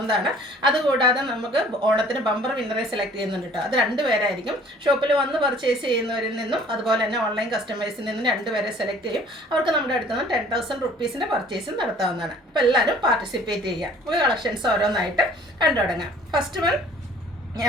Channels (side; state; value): both; normal; correlation 0.53